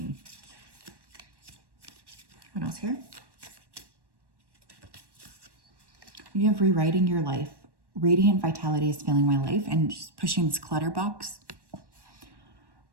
What else here? You have rewriting your life. Radiant vitality is filling my life and just pushing this clutter box.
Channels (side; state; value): left; late; 1.1 ms